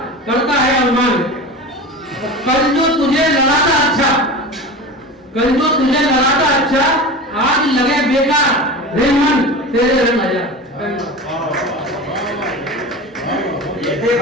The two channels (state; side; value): normal; both; correlation 0.31